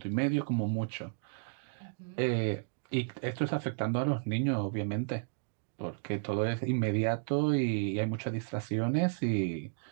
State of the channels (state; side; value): silent; left; digital silence